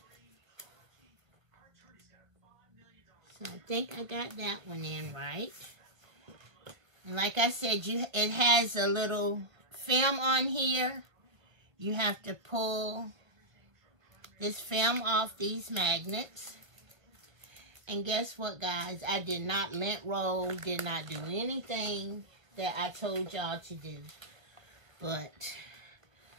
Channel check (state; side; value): late; left; 1.5 ms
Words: So I think I got that one in right. And like I said, it has a little film on here. You have to pull this film off these magnets. And guess what, guys? I did not lint roll, did not do anything that I told y'all to do. But